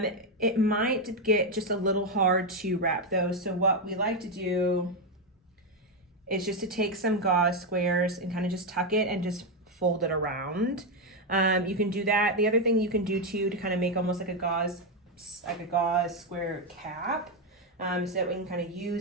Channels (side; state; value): both; normal; correlation 0.05